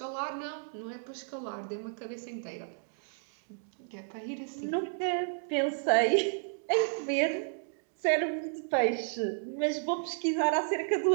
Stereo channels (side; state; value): left; silent; digital silence